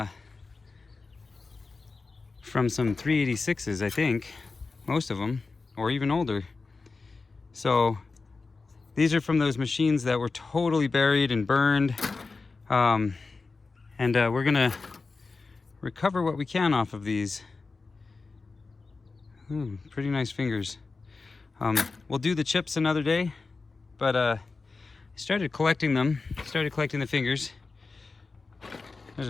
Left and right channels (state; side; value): quieter; right; 4.1 dB